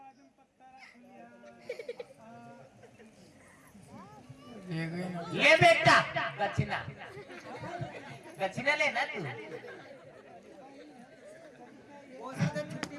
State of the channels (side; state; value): both; identical; correlation 1.00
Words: ले बेटा दक्षिणा, दक्षिणा लेना तू।